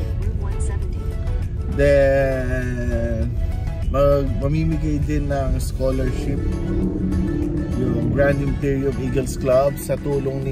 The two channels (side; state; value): both; identical; correlation 1.00